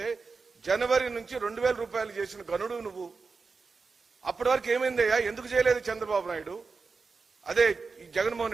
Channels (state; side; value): quieter; left; 4.6 dB